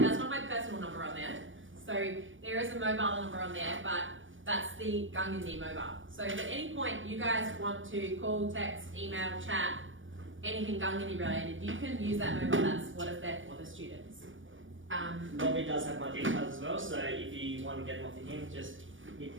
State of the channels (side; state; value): left; late; 0.57 ms